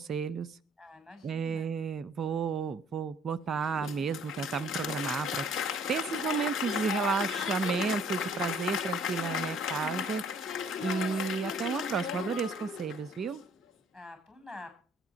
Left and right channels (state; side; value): normal; both; correlation 0.58